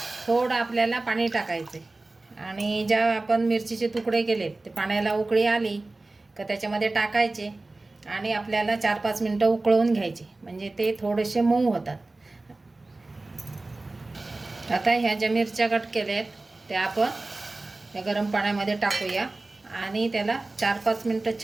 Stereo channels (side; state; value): left; quieter; 3.1 dB